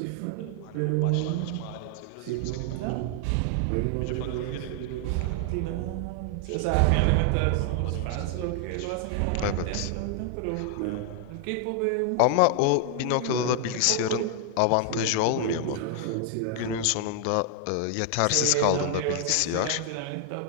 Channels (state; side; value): different; both; correlation 0.00